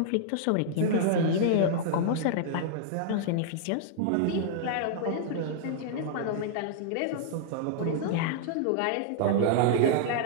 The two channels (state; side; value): different; both; correlation -0.01